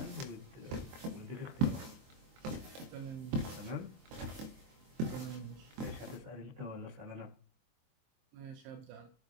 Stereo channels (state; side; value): late; left; 23 ms